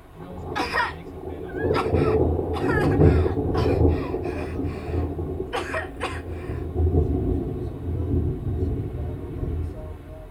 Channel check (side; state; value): both; identical; correlation 1.00